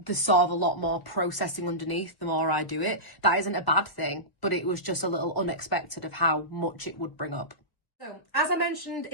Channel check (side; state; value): right; late; 1.0 ms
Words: sort of a lot more processing underneath the more I do it. That isn't a bad thing, but it was just a little unexpected of how much it would bring up. So, as I mentioned